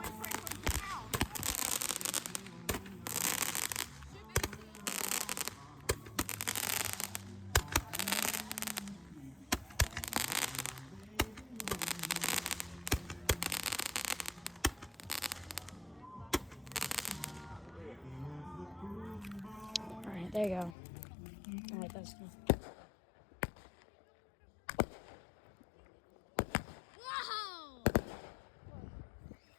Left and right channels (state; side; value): drops out; right; at 20.8 s